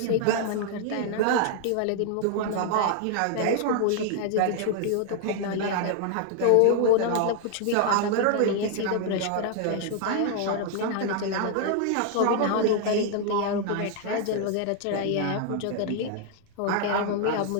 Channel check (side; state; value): both; different; correlation 0.00